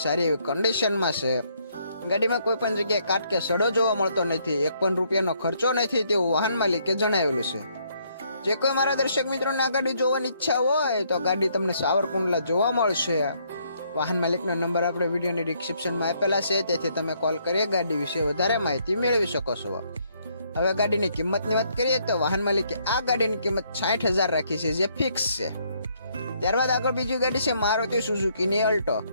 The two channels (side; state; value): both; inverted; correlation -0.70